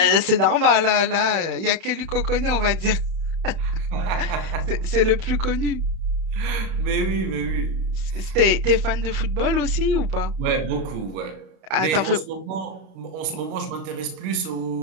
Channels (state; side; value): late; left; 32 ms